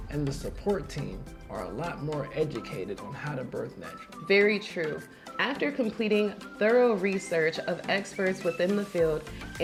and the support team are a lot more educated on how to birth naturally. Very true. After completing thorough research of experts within the field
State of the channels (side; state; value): both; identical; correlation 1.00